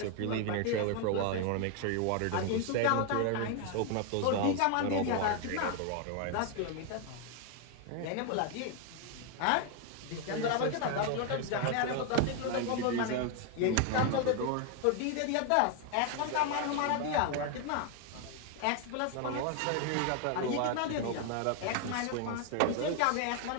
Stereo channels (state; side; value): different; both; correlation 0.01